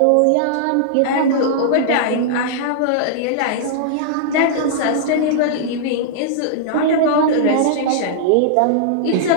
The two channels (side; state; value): both; different; correlation -0.02